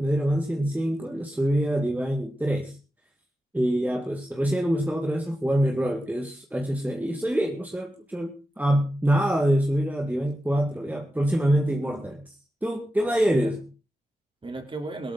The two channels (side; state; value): both; normal; correlation 0.91